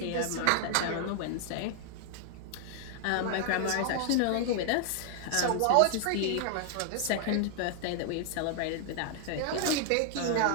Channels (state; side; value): different; both; correlation 0.00